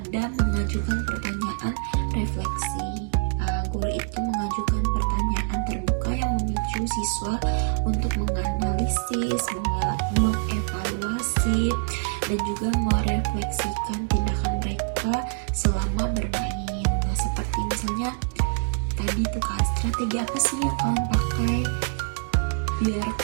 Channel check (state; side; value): silent; left; 62 dB below the other